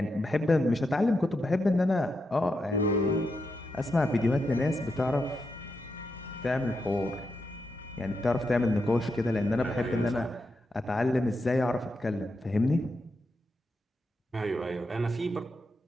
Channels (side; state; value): both; normal; correlation 0.85